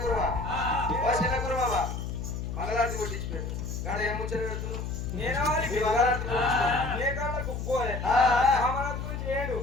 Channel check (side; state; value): left; noise; hum, 5 dB below the sound